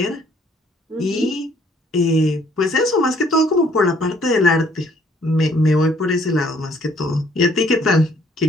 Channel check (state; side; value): normal; both; correlation 0.62